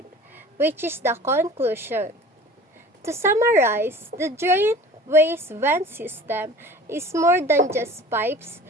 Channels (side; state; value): both; normal; correlation 0.43